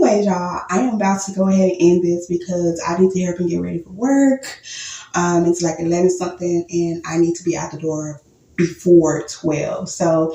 y'all, I am about to go ahead and end this because I need to hurry up and get ready for work. It's like 11 something, and I need to be out the door before 12.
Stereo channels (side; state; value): both; identical; correlation 1.00